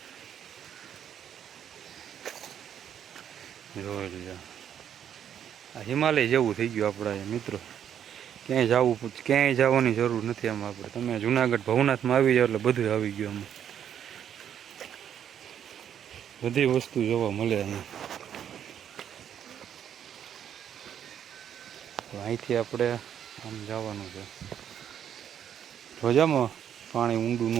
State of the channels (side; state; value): left; quieter; 9.3 dB